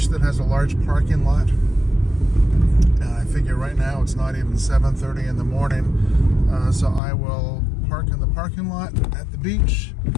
that has a large parking lot. I figure right now it's not even 7:30 in the morning, so I will park in the parking lot at the beach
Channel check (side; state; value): right; drops out; at 7.0 s